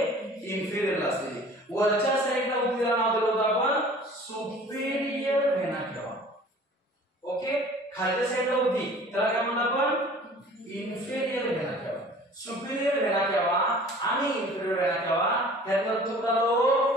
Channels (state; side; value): normal; both; correlation 0.47